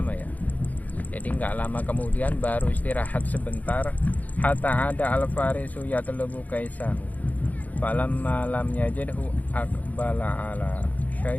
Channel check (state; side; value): late; right; 0.077 ms